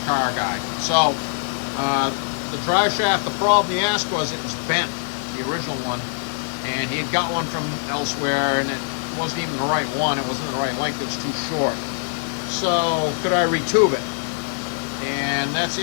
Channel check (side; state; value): right; silent; digital silence